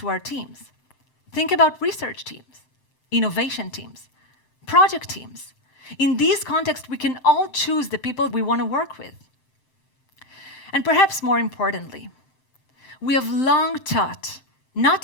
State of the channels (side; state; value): right; late; 7.7 ms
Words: our teams. Think about research teams, innovation teams, project teams. In these contexts, we can all choose the people we want to work with. And perhaps more importantly, We have long taught not